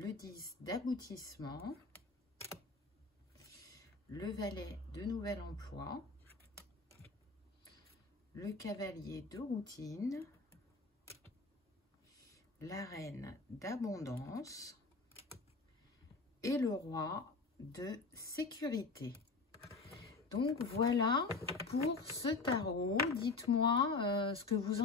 10 d'aboutissement, le valet de nouvel emploi, le cavalier de routine, la reine d'abondance et le roi de sécurité. Donc voilà pour ce tarot. Dites-moi ce que vous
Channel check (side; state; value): right; quieter; 3.9 dB